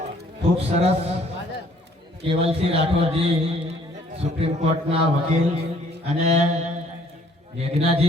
ખૂબ સરસ કેવલસિંહ રાઠોડજી સુપ્રીમ કોર્ટના વકીલ અને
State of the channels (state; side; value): normal; both; correlation 0.61